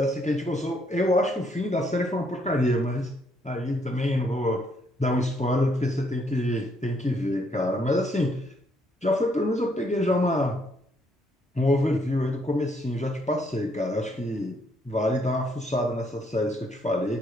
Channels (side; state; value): both; normal; correlation 0.71